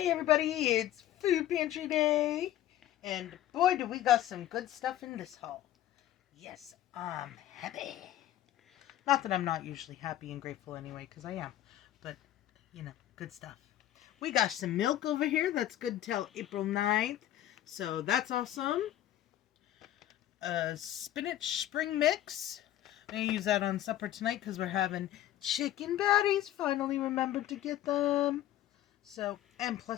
everybody, it's Food Pantry Day, and boy do we got some good stuff in this haul. Yes, I'm happy. Not that I'm not usually happy and grateful anyway, because I am, but, good stuff. We got some milk over here that's good till April 9th, so that's awesome. Spinach spring mix. I'm going to use that on supper tonight because we're having chicken patties. Finally remembered to get them. So, and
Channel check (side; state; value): right; quieter; 12.9 dB